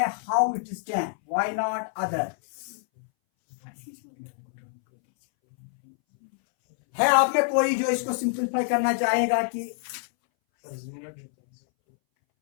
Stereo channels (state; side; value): silent; right; 60 dB below the other